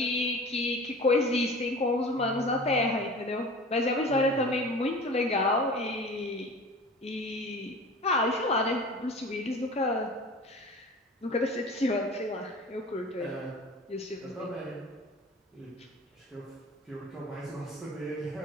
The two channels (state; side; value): normal; both; correlation 0.39